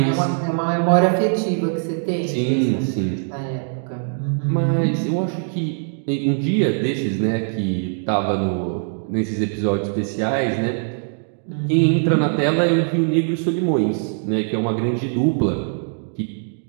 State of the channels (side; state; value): left; silent; digital silence